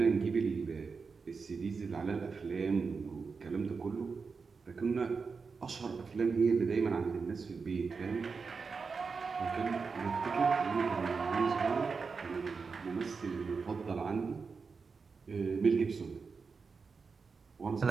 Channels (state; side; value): quieter; left; 5.0 dB